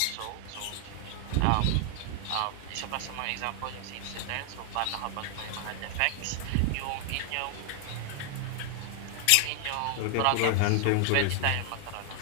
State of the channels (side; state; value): both; different; correlation 0.00